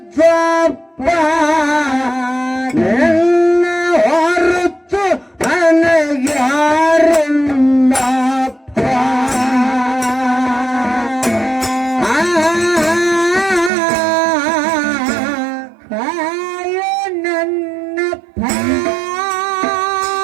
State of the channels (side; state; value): left; drops out; at 13.7 s